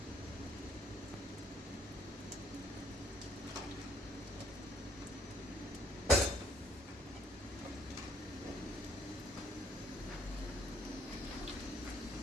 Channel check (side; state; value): both; normal; correlation 0.64